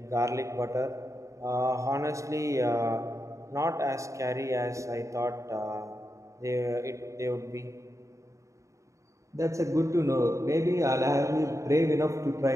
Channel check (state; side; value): late; left; 0.15 ms